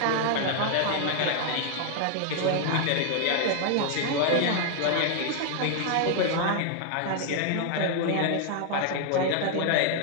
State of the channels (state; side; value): different; both; correlation 0.00